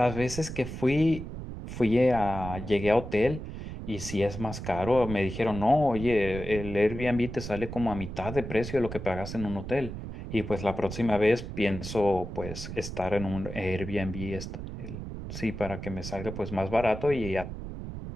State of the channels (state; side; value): noise; right; rumble, 8 dB below the sound